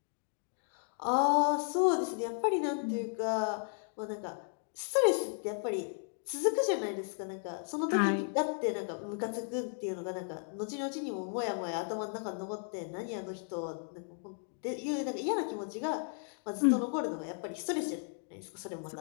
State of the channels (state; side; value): silent; right; 55 dB below the other